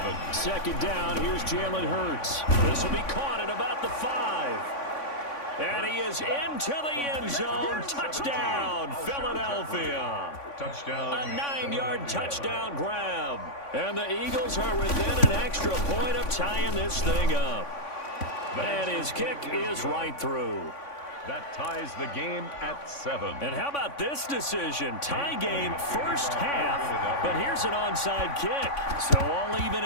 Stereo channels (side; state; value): right; late; 3.5 ms